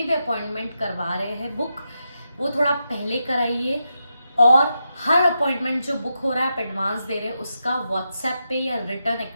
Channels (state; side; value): inverted; both; correlation -0.86